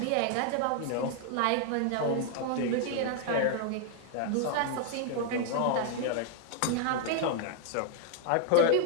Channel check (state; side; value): different; both; correlation 0.00